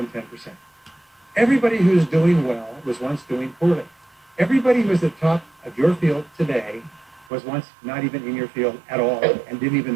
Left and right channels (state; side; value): drops out; left; at 7.3 s